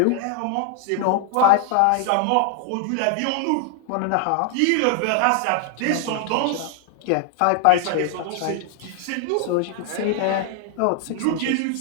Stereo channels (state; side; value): different; both; correlation 0.00